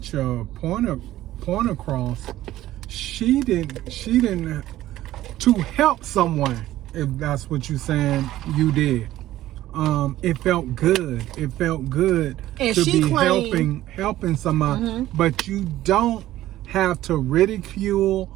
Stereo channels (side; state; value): left; quieter; 14.5 dB